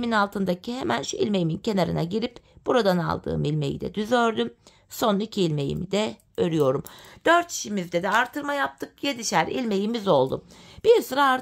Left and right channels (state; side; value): identical; both; correlation 1.00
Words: altındaki hemen şu ilmeğimin kenarına girip buradan aldığım ilmeği de düz ördüm. Son 2 ilmeğimi de örüyorum. 4 şişimizde de artırma yaptık. 7'şer ilmeğimiz oldu. Bir sıra